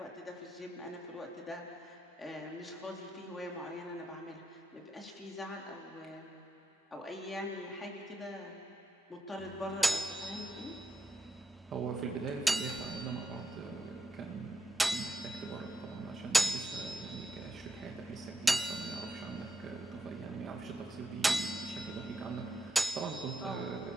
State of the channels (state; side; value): normal; both; correlation 0.84